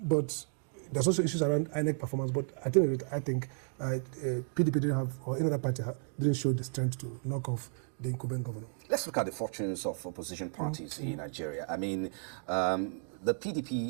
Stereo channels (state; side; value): silent; left; 56 dB below the other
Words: there's also issues around INEC performance. But I think PDP didn't have, or any other party didn't show the strength to knock off the incumbent governor. Let's look at the fortunes of opposition parties in Nigeria. The